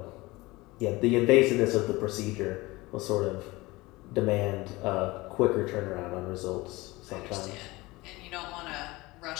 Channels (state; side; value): quieter; right; 21.3 dB